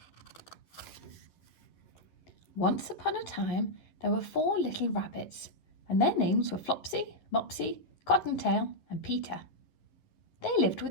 Once upon a time, there were 4 little rabbits, and their names were Flopsy, Mopsy, Cottontail, and Peter. They lived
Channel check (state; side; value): late; right; 11 ms